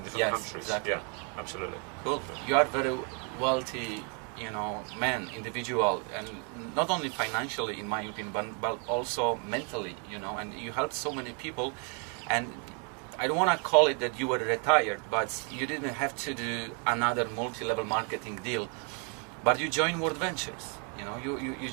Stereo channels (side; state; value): left; quieter; 38.2 dB